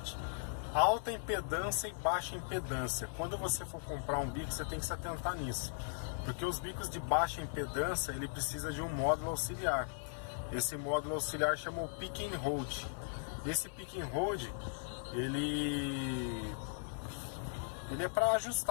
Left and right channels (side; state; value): right; silent; 52 dB below the other